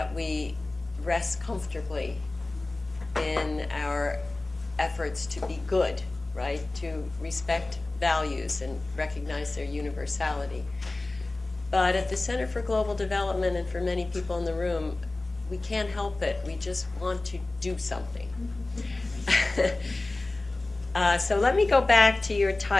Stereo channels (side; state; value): right; quieter; 3.0 dB